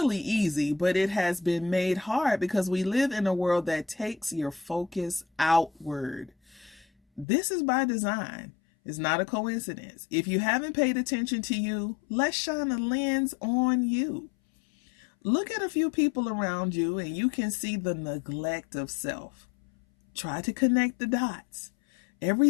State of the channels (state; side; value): drops out; right; at 7.2 s